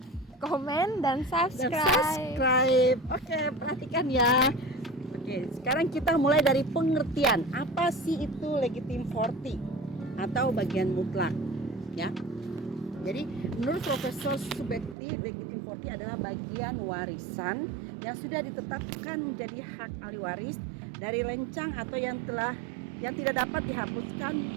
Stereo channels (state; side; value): drops out; left; at 15.0 s